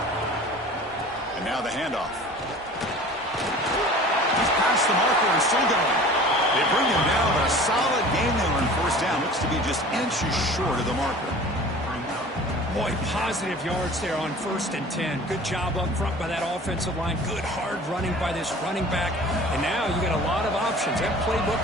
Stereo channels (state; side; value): normal; both; correlation 0.43